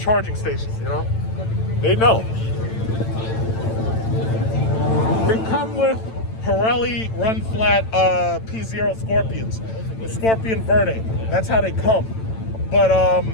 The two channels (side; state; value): right; late; 9.0 ms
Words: station, you know? They know. They come with Pirelli run flat P0 Scorpions, the Scorpion Verde. That's how they come. But